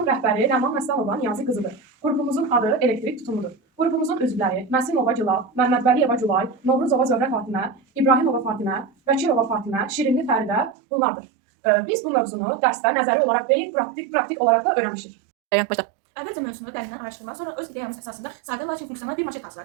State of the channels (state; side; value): drops out; left; at 10.8 s